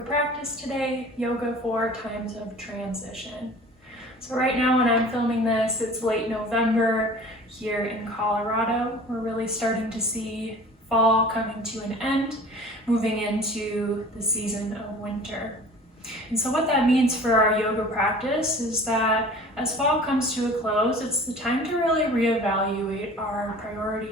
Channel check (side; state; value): both; normal; correlation 0.44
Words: practice today, Yoga for Times of Transition. So right now when I'm filming this, it's late November here in Colorado. We're really starting to see fall coming to an end, moving into the season of winter. And so what that means for our yoga practice is that as fall comes to a close, it's the time to really reevaluate our